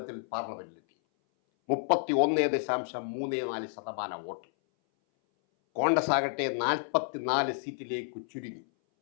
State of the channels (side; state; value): right; silent; 57 dB below the other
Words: പാർലമെന്റിലെത്തി. 31.34% വോട്ട്. കോൺഗ്രസ് ആകട്ടെ 44 സീറ്റിലേക്ക് ചുരുങ്ങി.